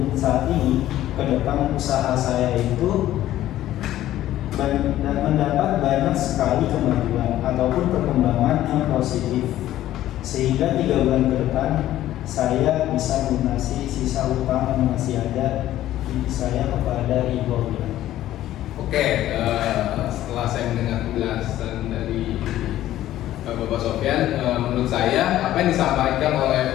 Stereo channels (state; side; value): quieter; right; 13.6 dB